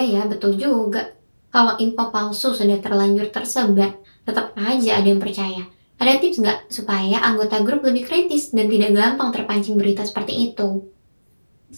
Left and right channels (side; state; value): both; inverted; correlation -1.00